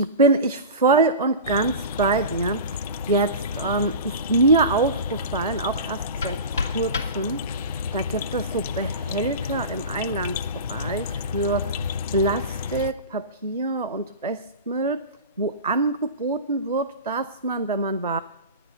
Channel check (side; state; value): both; inverted; correlation -0.30